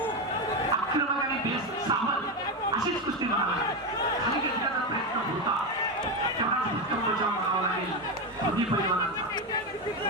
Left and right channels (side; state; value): both; normal; correlation 0.13